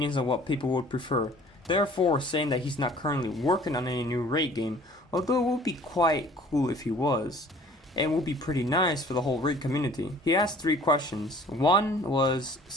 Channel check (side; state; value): both; normal; correlation 0.51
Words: on what people would prefer." Therefore, saying that he's not currently working on any new Rake game, although it would be quite cool if he was, and would be pretty nice for the whole Rake community. He asked 3 questions. One was